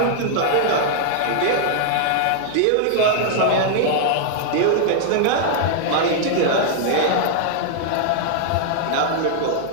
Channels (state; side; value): different; both; correlation -0.01